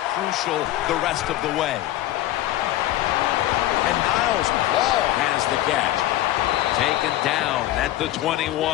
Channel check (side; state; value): right; quieter; 14.7 dB